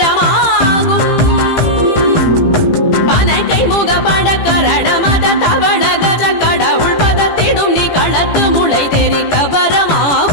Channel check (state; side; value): late; right; 18 ms